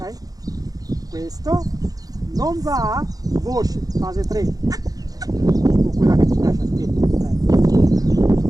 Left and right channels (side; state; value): left; late; 0.18 ms